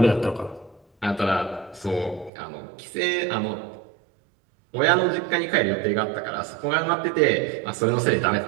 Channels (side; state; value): left; drops out; at 2.3 s